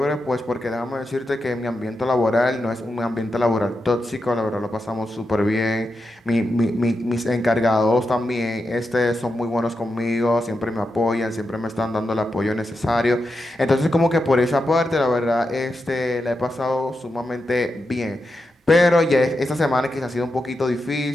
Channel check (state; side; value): normal; both; correlation 0.87